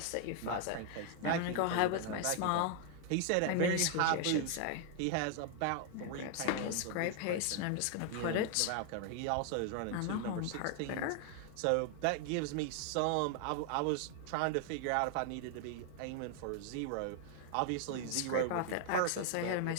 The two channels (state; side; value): different; both; correlation 0.00